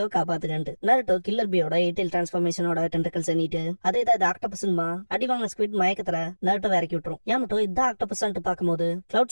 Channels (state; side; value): inverted; both; correlation -1.00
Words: காப்பாத்துக்கன்ட்டு. நருட்டோ கில்லர் பியோட 8 டிரான்ஸ்ஃபர்மேஷனோட டென்டக்கிள்ஸ் எண்ணிட்டு அதே தான் ஆக்டோபஸ்மா அடி வாங்கின ஸ்குவிட் மயக்கத்துல நருட்டோ இறக்கி விட்டுரும். யாமட்டோ இதான் ஆக்டோபஸ்ன்ட்டு பாக்கும்போது